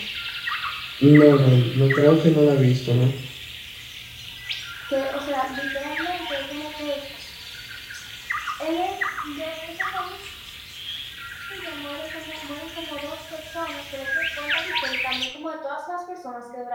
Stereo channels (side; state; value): both; identical; correlation 1.00